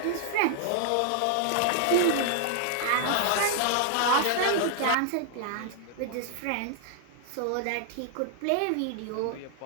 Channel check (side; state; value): both; different; correlation -0.01